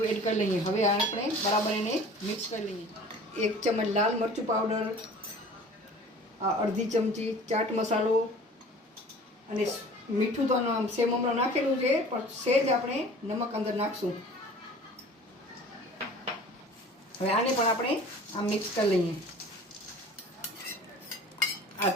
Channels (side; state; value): both; normal; correlation 0.45